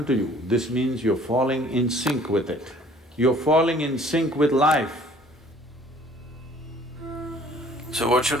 to you. This means you're falling in sync with it. You're falling in sync with life. So what should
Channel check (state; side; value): normal; both; correlation 0.55